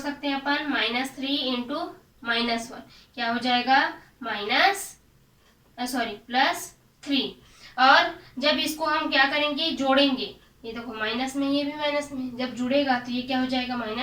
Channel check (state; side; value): identical; both; correlation 1.00